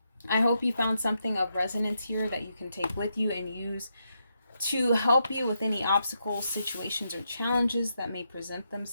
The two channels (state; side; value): inverted; both; correlation -0.82